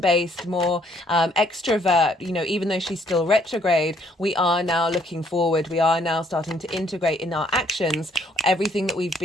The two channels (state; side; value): normal; both; correlation 0.66